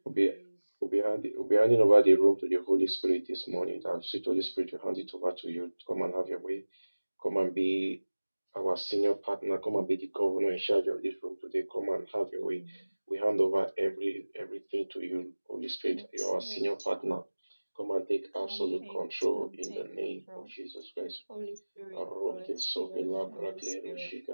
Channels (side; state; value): both; inverted; correlation -1.00